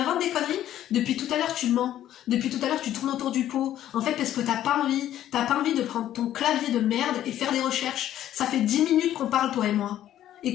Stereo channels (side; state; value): right; quieter; 12.1 dB